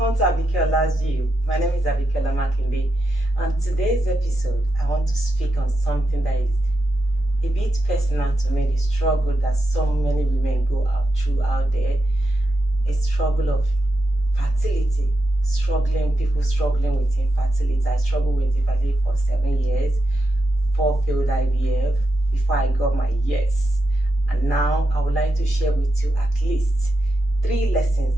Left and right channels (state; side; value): normal; both; correlation 0.86